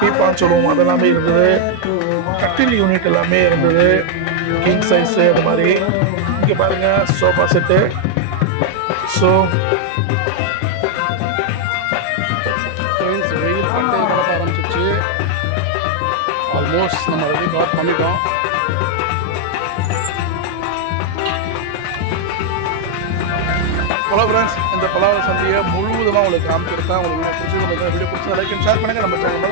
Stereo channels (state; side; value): different; both; correlation 0.00